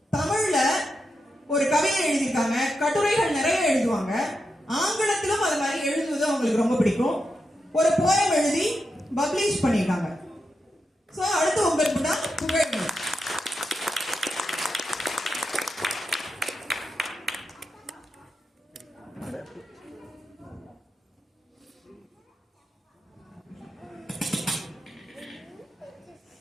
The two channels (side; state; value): both; normal; correlation 0.87